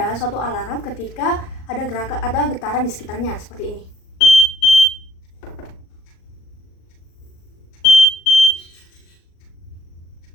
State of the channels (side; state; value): right; late; 38 ms